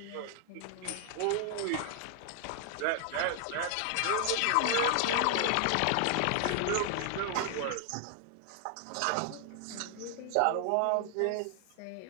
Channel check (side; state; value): both; different; correlation 0.00